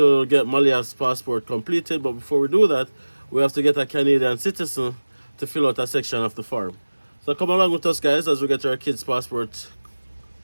get Malia's passport completed. But before we do that, we have to get a Canadian citizen to fill out a section of the form. So come along with us guys as we get our kids' passport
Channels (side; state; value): both; inverted; correlation -1.00